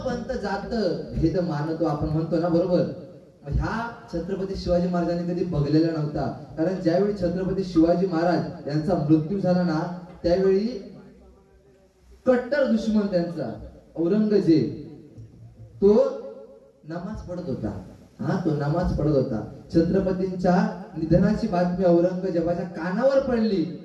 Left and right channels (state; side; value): identical; both; correlation 1.00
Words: पंथ जात भेद मानतो आपण म्हणतो ना, बरोबर. ह्या छत्रपती शिवाजी महाराजांनी कधी बघलेला नव्हता. कारण ज्यावेळी छत्रपती शिवाजी महाराज यांचा मृत्यू झाला ना, त्यावेळी कट्टर दुश्मन त्यांचा औरंगजेब तो नमाज पढत होता. तो नमाज पढत होता. छत्रपतींच्या निधनाची बातमी औरंगजेबाच्या कानावर पडली.